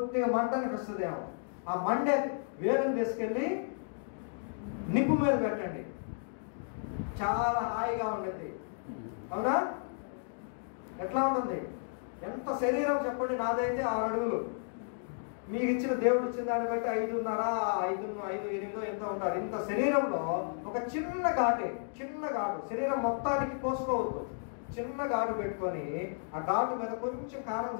మంటని వస్తుందేమో. ఆ మండే వేలుని తీసుకెళ్ళి నిప్పు మీద పెట్టండి. చాలా హాయిగా ఉండేది. అవునా? ఎట్లా ఉంటుంది? ఎంత శరీరం చెప్పండి. నాదైతే 6 అడుగులు. మీకు ఇచ్చిన దేవుడు ఇచ్చిన దాన్ని బట్టి 5.5, 5.8 ఎంత ఉంటారు. ఇంత శరీరంలో ఒక చిన్న ఘాటు, శరీరం మొత్తానికి కోసుకోవద్దు. చిన్న ఘాటు పెట్టుకొని ఆ ఘాటు మీద కొంచెం కారం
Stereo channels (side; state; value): right; silent; digital silence